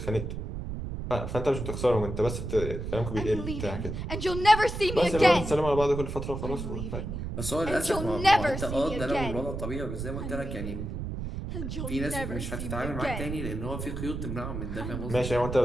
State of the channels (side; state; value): right; noise; rumble, 5 dB below the sound